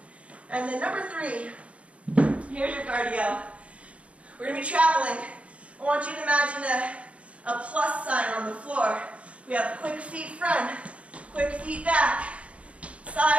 And then number 3, here's your cardio. We're going to be traveling. I want you to imagine a plus sign on the floor. We have quick feet front, quick feet back,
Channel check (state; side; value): late; left; 0.063 ms